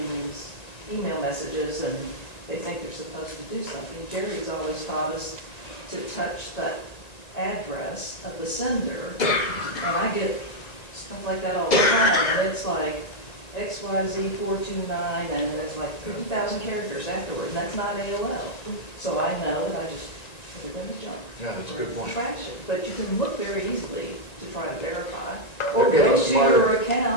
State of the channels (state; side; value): late; right; 1.9 ms